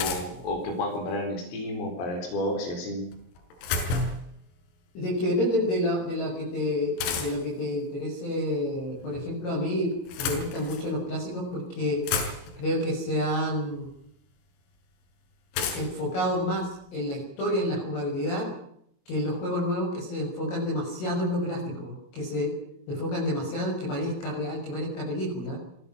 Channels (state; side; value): late; right; 23 ms